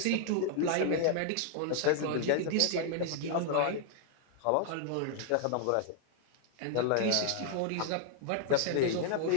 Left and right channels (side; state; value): both; different; correlation 0.00